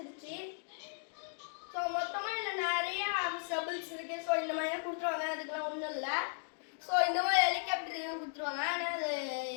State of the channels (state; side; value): silent; right; digital silence